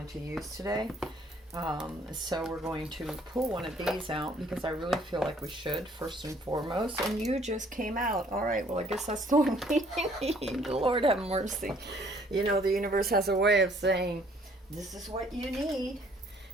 to use today. So we're going to pull one of these out because I really feel like we should, first and foremost. And you just came out. All right, well, I guess that's the one we need. Lord have mercy. You know, the universe has a way of saying, this is what you need.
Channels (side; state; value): both; normal; correlation 0.61